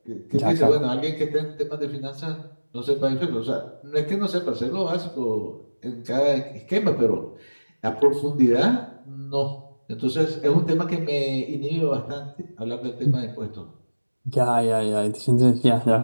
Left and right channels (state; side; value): inverted; both; correlation -1.00